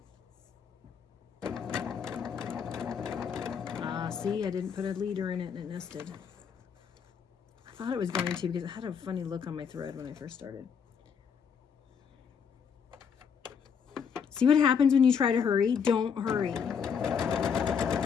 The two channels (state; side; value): quieter; right; 6.9 dB